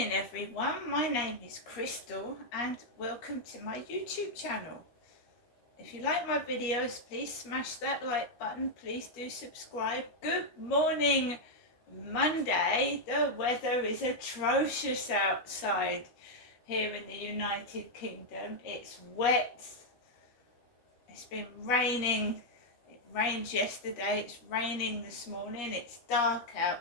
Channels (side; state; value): right; late; 13 ms